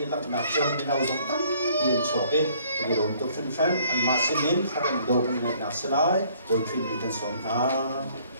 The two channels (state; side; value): inverted; both; correlation -0.61